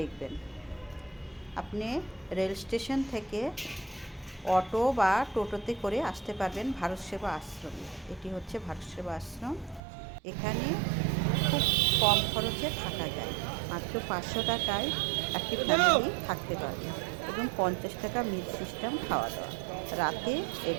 আপনি রেল স্টেশন থেকে অটো বা টোটোতে করে আসতে পারবেন ভারত সেবা আশ্রমে। এটি হচ্ছে ভারত সেবা আশ্রম। এখানে খুব কম খরচে থাকা যায়, মাত্র 500 টাকায় একটি ফ্যামিলি থাকতে পারবে এবং 50 টাকা মিল সিস্টেম খাওয়া দাওয়া রাতে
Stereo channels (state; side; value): drops out; left; at 9.8 s